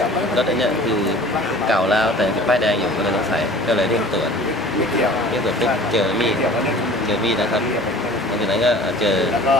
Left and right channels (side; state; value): both; normal; correlation 0.45